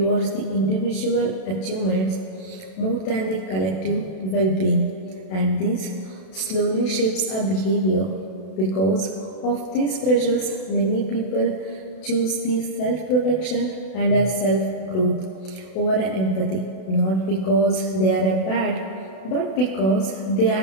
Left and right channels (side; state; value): right; late; 32 ms